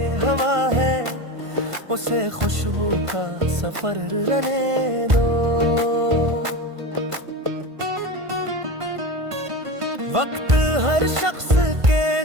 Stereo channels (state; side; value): late; left; 1.5 ms